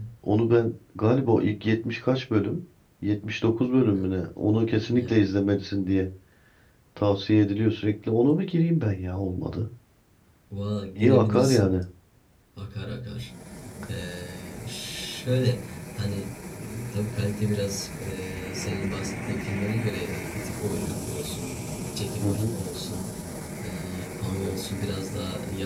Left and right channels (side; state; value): both; identical; correlation 1.00